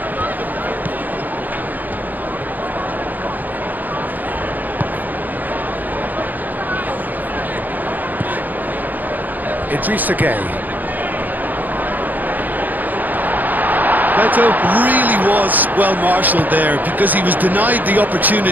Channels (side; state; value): left; late; 0.084 ms